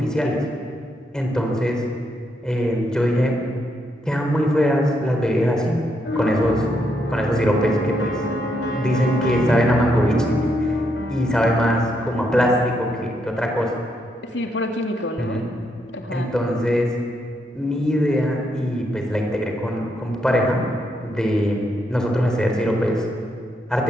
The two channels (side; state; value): both; normal; correlation 0.78